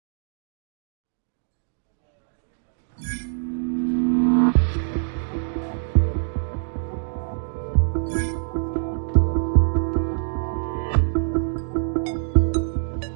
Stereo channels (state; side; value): silent; left; digital silence